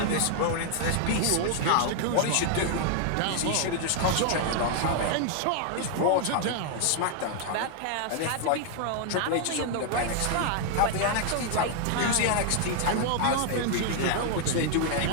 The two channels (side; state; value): both; different; correlation 0.00